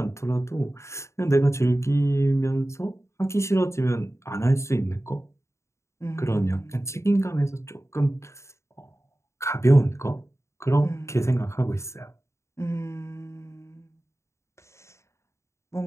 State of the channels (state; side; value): late; right; 0.14 ms